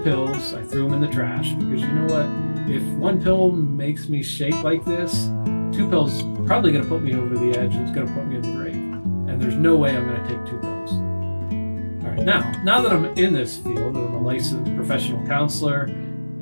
I threw them in the trash, because you know what? If 1 pill makes me shake like this, 2 pills are probably going to put me over the edge. It's going to put me in the grave. And there's no way I'm going to take 2 pills. All right, now that I'm in this field, I'm a licensed professional counselor,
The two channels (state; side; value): inverted; both; correlation -1.00